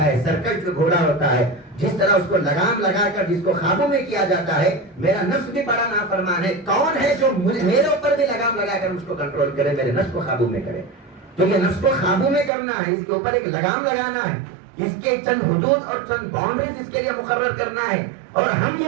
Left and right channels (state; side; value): drops out; left; at 12.5 s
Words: ہے، سرکش جو گھوڑا ہوتا ہے، جس طرح اس کو لگام لگا کر جس کو قابو میں کیا جاتا ہے، میرا نفس بھی بڑا نافرمان ہے. کون ہے جو میرے اوپر بھی لگام لگا کر اس کو کنٹرول کرے، میرے نفس کو قابو میں کرے؟ تو یہ نفس کو قابو میں کرنا ہے، اس کے اوپر ایک لگام لگانا ہے، اس کے چند حدود اور چند باؤنڈریز اس کے لیے مقرر کرنا ہے. اور ہم